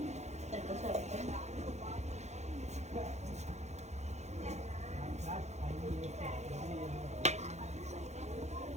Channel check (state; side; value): late; left; 0.33 ms